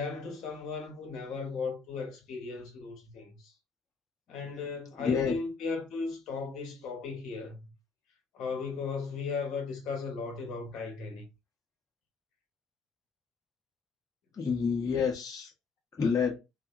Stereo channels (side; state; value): right; quieter; 5.1 dB